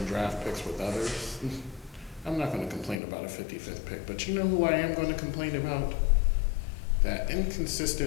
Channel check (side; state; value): right; drops out; at 3.0 s